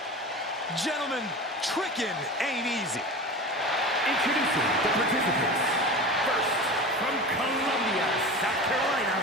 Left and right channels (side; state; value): both; normal; correlation 0.31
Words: Gentlemen, tricking ain't easy. Introducing the participants. First, from Columbia, South Carolina,